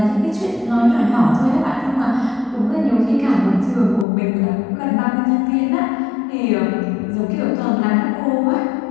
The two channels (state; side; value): drops out; right; at 4.0 s